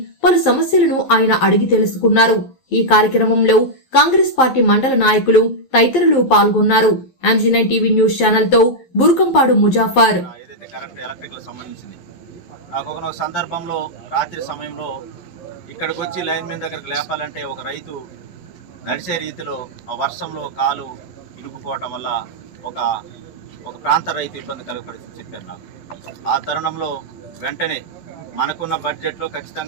పలు సమస్యలను ఆయన అడిగి తెలుసుకున్నారు. ఈ కార్యక్రమంలో కాంగ్రెస్ పార్టీ మండల నాయకులు తదితరులు పాల్గొన్నారు. MG9 టీవీ న్యూస్ ఛానల్ తో బూర్కంపాడు ముజాఫర్. నాకు ఒక సందర్భంలో రాత్రి సమయంలో ఇక్కడికి వచ్చి లైన్ మీద దగ్గరకు లేపాలంటే ఒక రైతు నడిచే రీతిలో ఆ వర్షంలో కాలు ఇరుక్కుపోవటం వల్ల ఒక ప్రాంత రైతు ఇబ్బంది కలిగే పరిస్థితి చెప్పారు నాకు. ఆ తరుణంలో వెంటనే మనకున్న బడ్జెట్లో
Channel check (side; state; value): right; late; 11 ms